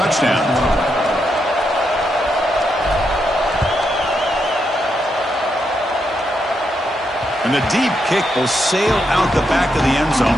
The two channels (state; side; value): normal; both; correlation 0.81